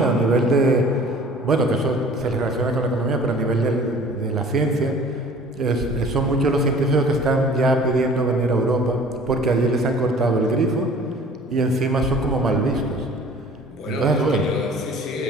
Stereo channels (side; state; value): both; normal; correlation 0.48